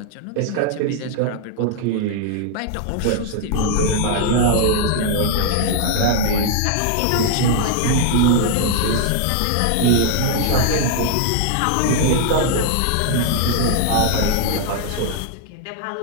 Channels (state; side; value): different; both; correlation 0.00